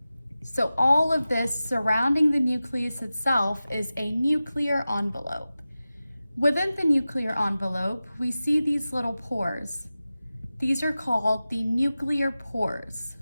So all of this surrounding the nucleus itself is a nuclear envelope. Within the nuclear envelope, we see these little pores. These are called the nuclear pores.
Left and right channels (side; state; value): both; inverted; correlation -0.95